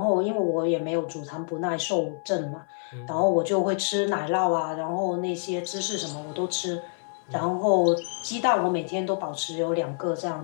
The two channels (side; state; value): right; silent; 60 dB below the other